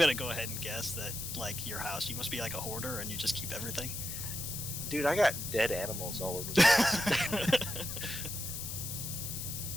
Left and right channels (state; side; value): noise; left; hiss, 5 dB below the sound